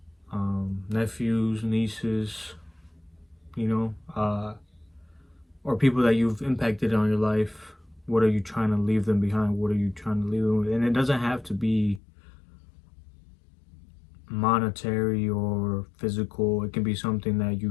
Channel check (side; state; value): right; drops out; at 12.0 s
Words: nephews, nieces, or people that you've impacted on your life. What are you trying to leave them behind? What are you trying to leave them with? And it doesn't have to be monetary or physical. It can be something that